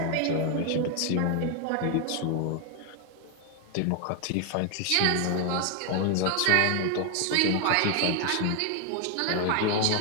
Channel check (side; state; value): both; different; correlation 0.00